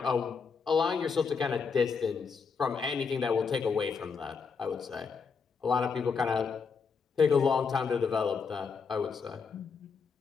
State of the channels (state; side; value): quieter; right; 5.5 dB